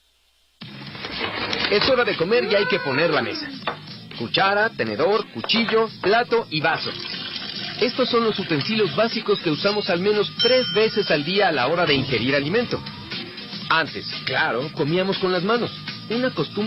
Es hora de comer y hay que poner la mesa. Cuchara, tenedor, cuchillo, plato y vaso. Estos son los utensilios básicos que usamos al menos 3 veces al día a la hora de ingerir alimento. Antes, claro, comíamos con las manos. Una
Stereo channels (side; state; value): both; identical; correlation 1.00